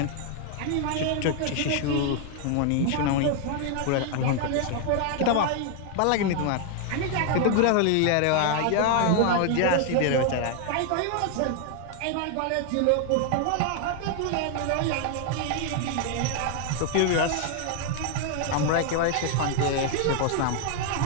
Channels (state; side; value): different; both; correlation 0.00